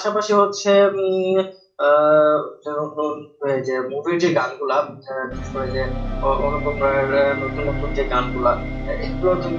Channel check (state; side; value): identical; both; correlation 1.00